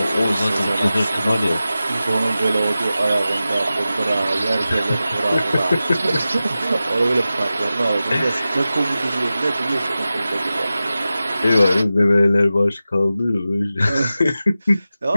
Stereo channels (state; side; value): inverted; both; correlation -0.94